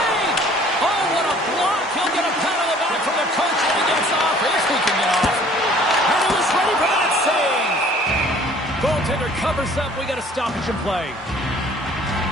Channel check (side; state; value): both; normal; correlation 0.54